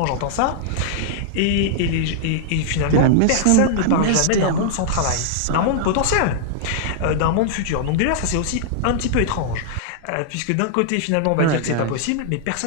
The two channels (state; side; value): different; both; correlation -0.01